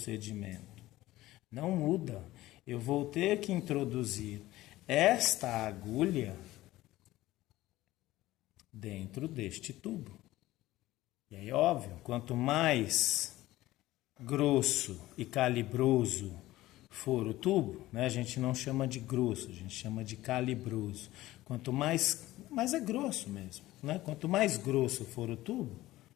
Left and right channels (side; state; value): right; quieter; 16.7 dB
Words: Não muda. Eu vou ter que introduzir esta agulha dentro deste tubo. E aí, óbvio, quanto mais grosso e calibroso for o tubo, né, a gente não chama de grosso, a gente chama de calibroso. Quanto mais é grosso mesmo, né? Quanto mais grosso for o tubo,